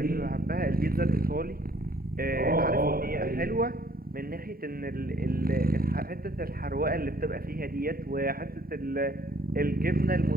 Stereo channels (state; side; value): late; left; 0.43 ms